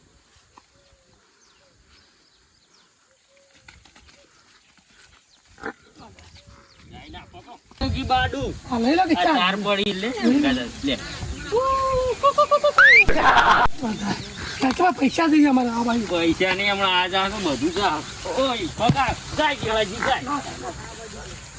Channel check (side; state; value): both; identical; correlation 1.00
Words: બાડુ લઈ લો કે ચાર પડી લે લે ખર્ચમાં પૈસા જોઈએ અમારે આ ભાઈ પૈસા નહીં હમણાં આ જા તો બધું જા ઓય પગાર જાય કેવાજી જાય